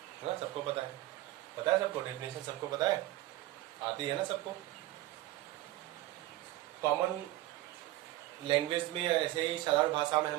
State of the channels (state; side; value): quieter; left; 16.4 dB